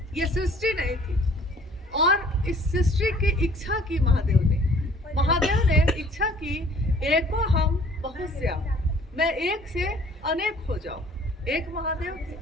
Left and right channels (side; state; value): both; normal; correlation 0.55